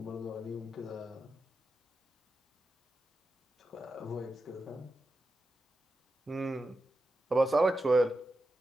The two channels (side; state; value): both; normal; correlation 0.90